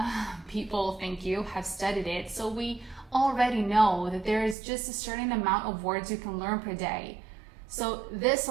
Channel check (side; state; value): left; drops out; at 4.5 s